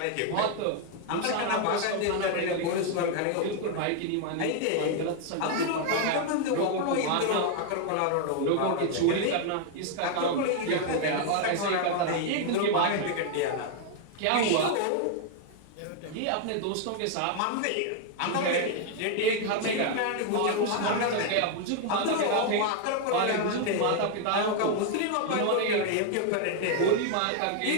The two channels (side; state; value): both; different; correlation 0.00